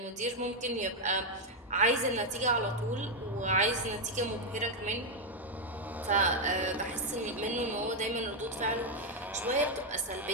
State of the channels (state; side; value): normal; both; correlation 0.02